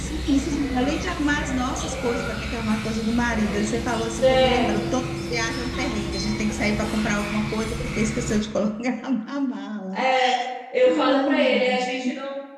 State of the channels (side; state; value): both; identical; correlation 1.00